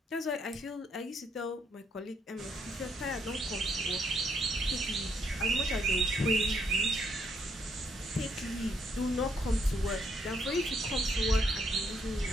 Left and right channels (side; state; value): both; normal; correlation 0.73